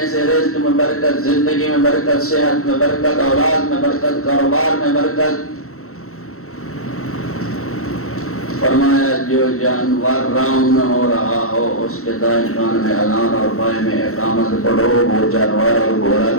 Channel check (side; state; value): right; late; 0.63 ms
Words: سے رزق میں برکت، زندگی میں برکت، صحت میں برکت، اولاد میں برکت، کاروبار میں برکت۔ فرمایا جو جانور راؤنڈ ہو رہا ہو اس کے دائیں کان میں اذان اور بائیں میں اقامت پڑھو، وہ جانور اور گھوڑا